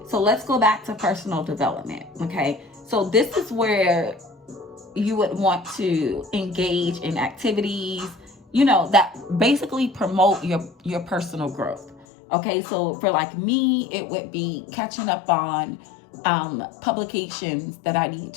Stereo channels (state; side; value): drops out; right; at 12.1 s